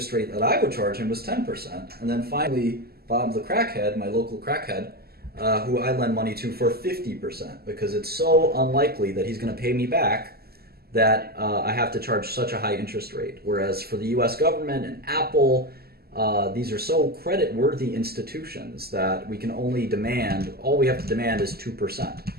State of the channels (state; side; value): late; left; 0.45 ms